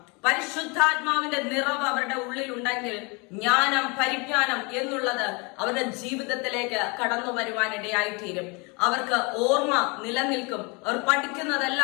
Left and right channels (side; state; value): right; quieter; 30.0 dB